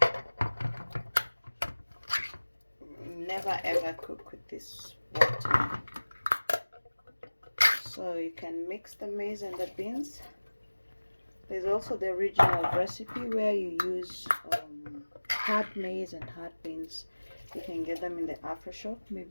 Never ever cook with this water. So you can mix the maize and the beans. There's also the original recipe where you use hard maize and hard beans. You can get them in the Afro shop.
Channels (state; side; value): inverted; both; correlation -1.00